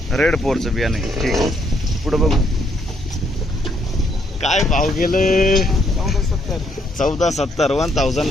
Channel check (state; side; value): normal; both; correlation 0.71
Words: रेड फोरचं बियाणं आहे. ठीक आहे. पुढं बघू काय भाव गेलं. 1470.